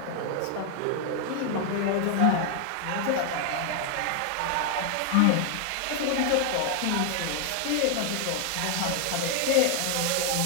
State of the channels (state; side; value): different; both; correlation 0.00